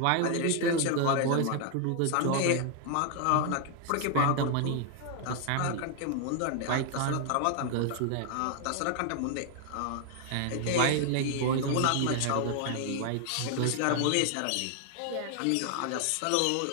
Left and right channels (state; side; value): different; both; correlation 0.00